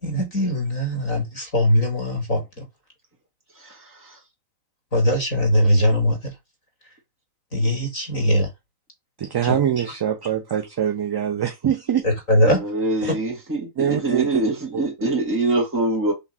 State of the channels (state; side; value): late; right; 3.9 ms